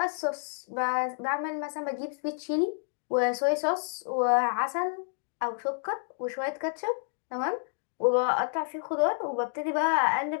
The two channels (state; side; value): silent; right; digital silence